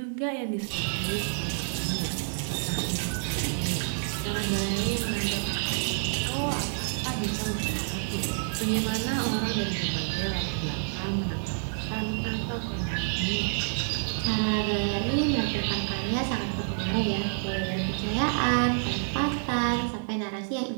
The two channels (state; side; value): silent; left; digital silence